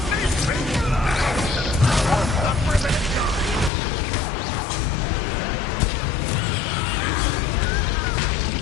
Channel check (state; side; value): drops out; right; at 3.7 s